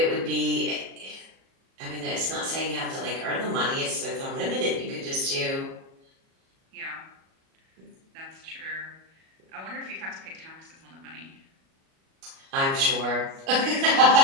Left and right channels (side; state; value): left; late; 37 ms